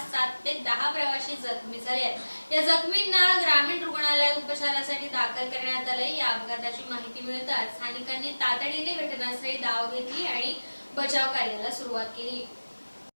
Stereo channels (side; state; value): both; inverted; correlation -1.00